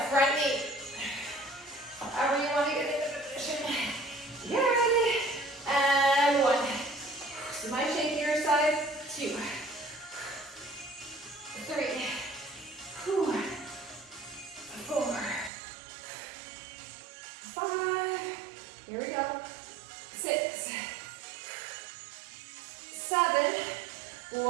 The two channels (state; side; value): drops out; left; at 15.5 s